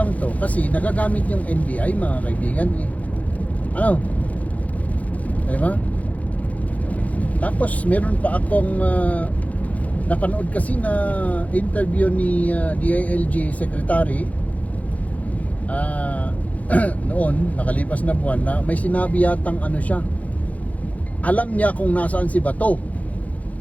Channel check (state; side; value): late; right; 0.070 ms